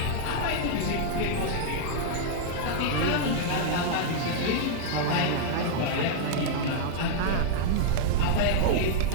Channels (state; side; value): different; both; correlation -0.01